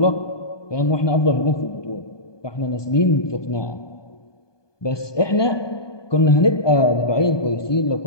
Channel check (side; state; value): right; late; 1.2 ms